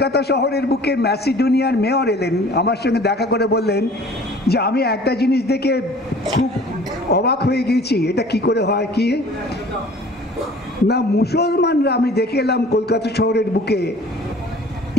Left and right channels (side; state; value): both; normal; correlation 0.48